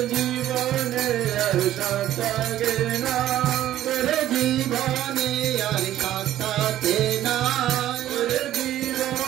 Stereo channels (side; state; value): left; quieter; 13.0 dB